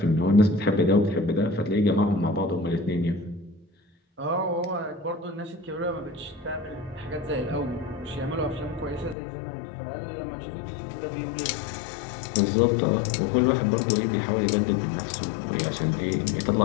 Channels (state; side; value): drops out; right; at 9.2 s